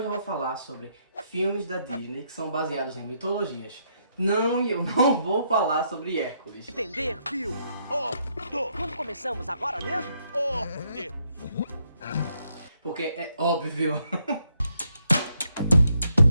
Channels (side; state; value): both; inverted; correlation -0.75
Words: eu vou falar sobre filmes da Disney que são baseados em mitologias. Não, eu não vou falar sobre Hércules. Entender, fio? Quando começamos agora mesmo? Porque é óbvio.